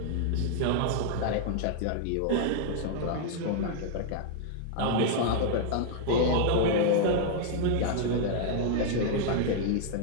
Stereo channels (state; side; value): different; both; correlation -0.01